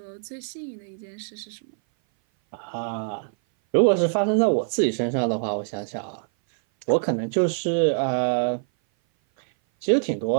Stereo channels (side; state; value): left; silent; 58 dB below the other